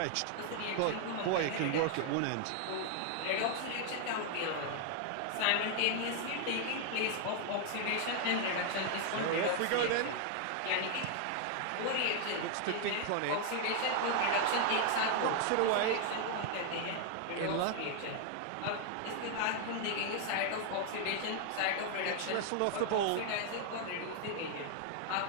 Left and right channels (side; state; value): both; different; correlation 0.00